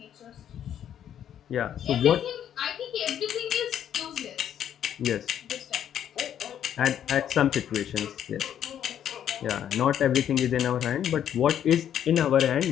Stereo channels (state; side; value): quieter; right; 9.9 dB